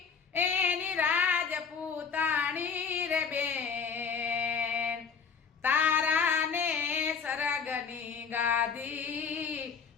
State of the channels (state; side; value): quieter; right; 6.1 dB